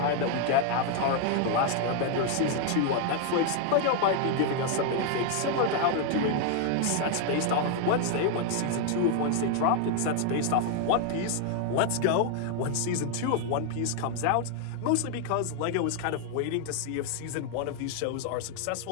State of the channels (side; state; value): both; different; correlation 0.00